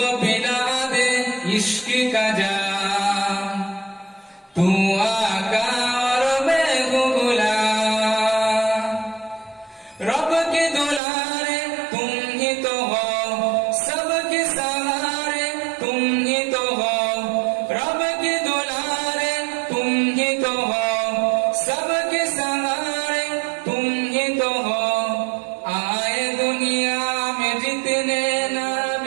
पिला दे इश्क का जाम, तू आका और मैं हूँ गुलाम। रब के दुलारे तुम ही तो हो, सबके सहारे तुम ही तो हो। रब के दुलारे तुम ही तो हो, सबके सहारे तुम ही तो हो। आए दुनिया में जितने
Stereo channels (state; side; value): drops out; left; at 11.0 s